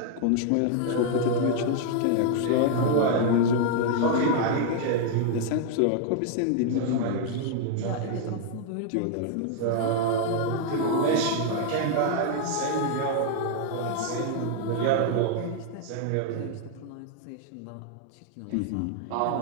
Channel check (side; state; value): both; different; correlation -0.01